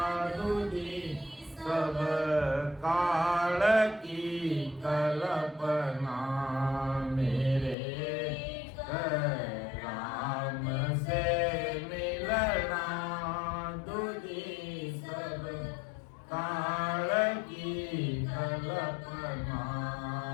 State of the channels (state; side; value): drops out; right; at 7.8 s